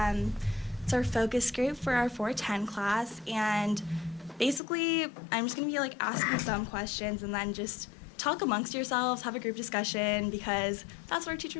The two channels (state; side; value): drops out; right; at 4.6 s